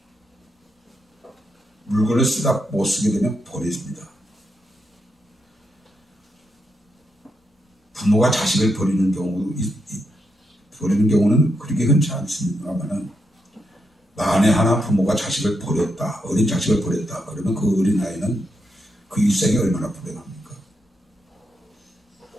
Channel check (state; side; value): normal; both; correlation 0.83